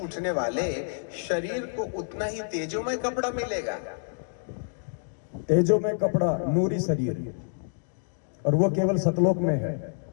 वाले शरीर को उतना ही तेजोमय कपड़ा मिलेगा। तेजोमय कपड़ा, नूरी शरीर, और वो केवल सतलोक में है,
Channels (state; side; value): silent; right; digital silence